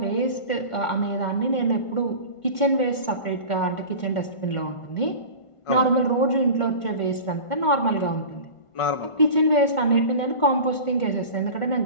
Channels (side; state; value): right; late; 1.5 ms